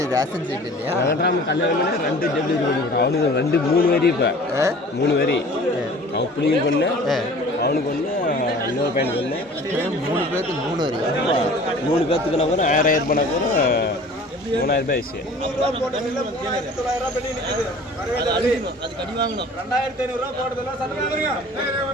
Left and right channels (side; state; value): both; normal; correlation 0.46